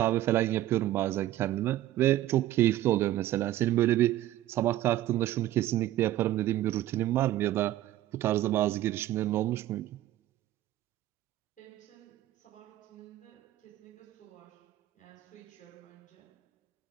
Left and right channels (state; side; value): quieter; left; 14.2 dB